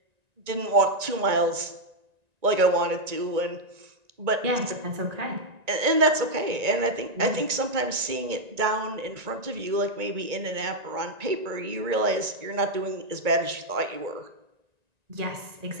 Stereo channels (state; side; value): late; left; 1.9 ms